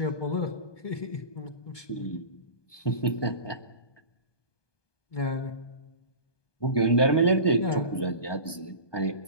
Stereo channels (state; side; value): late; right; 1.2 ms